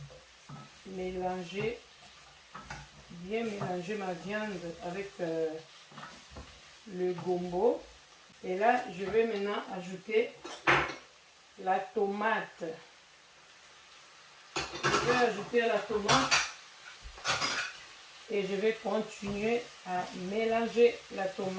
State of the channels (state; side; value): identical; both; correlation 1.00